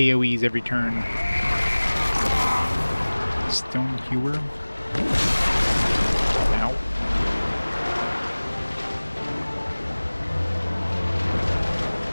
every turn. Stone Hewer. Ow.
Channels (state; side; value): inverted; both; correlation -1.00